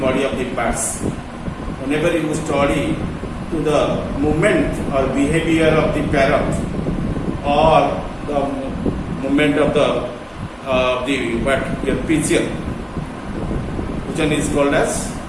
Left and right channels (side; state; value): both; identical; correlation 1.00